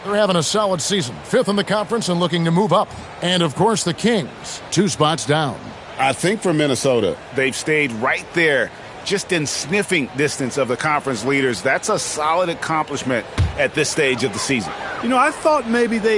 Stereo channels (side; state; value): both; identical; correlation 1.00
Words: They're having a solid season. 5th in the conference and looking to move up. And, of course, the Kings, 2 spots down. I think for Minnesota, they've stayed right there, just in sniffing distance of the conference leaders. That's a solid accomplishment at this stage of the season. You know, I thought maybe